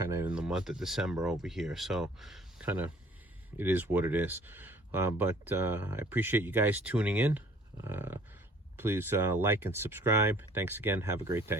of in the month of December over here, so kind of it is what it is. But I appreciate you guys tuning in. Please like and subscribe. Thanks again. Have a great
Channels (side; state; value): both; normal; correlation 0.55